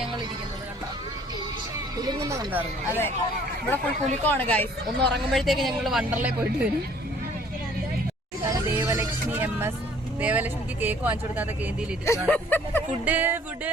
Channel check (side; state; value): both; normal; correlation 0.57